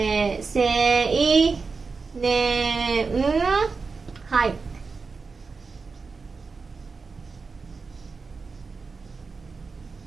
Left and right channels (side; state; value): left; quieter; 4.6 dB